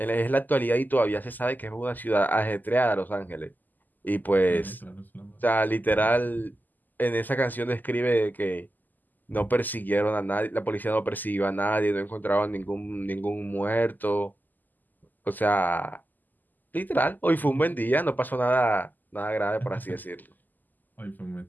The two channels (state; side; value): late; right; 0.085 ms